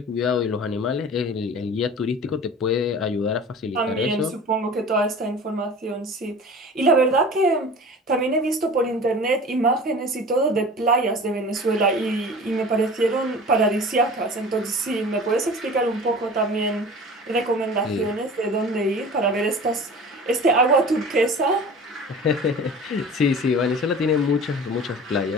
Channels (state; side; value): normal; both; correlation 0.39